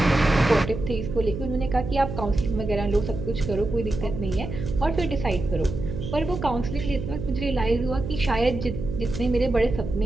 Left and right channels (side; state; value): right; noise; hum, 6 dB below the sound